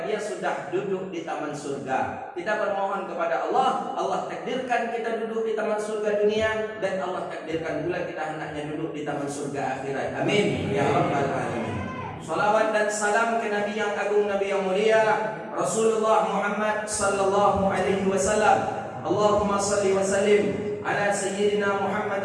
dia sudah duduk di taman surga. Kita bermohon kepada Allah, Allah takdirkan kita duduk di taman surga dunia, dan Allah takdirkan pula kita hendaknya duduk di taman surga akhirat. Amin ya rabbal alamin. Salawat dan salam ke Nabi yang agung, Nabi yang mulia, Rasulullah Muhammad sallallahu alaihi wasallam. Allahumma salli wa sallim ala sayyidina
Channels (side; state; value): both; identical; correlation 1.00